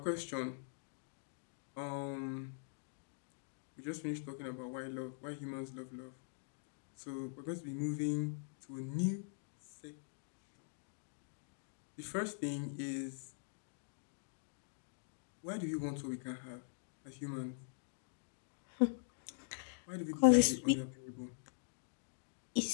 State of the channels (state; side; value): silent; right; digital silence